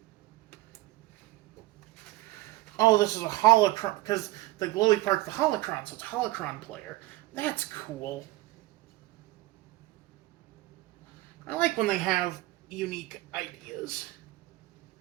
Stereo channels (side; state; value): left; quieter; 18.6 dB